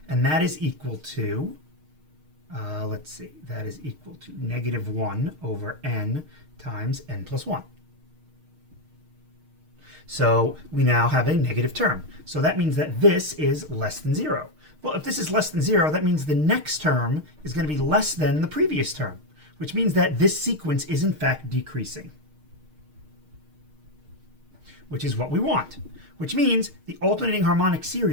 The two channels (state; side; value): late; left; 6.5 ms